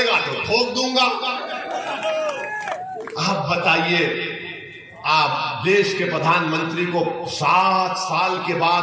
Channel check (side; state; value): both; identical; correlation 1.00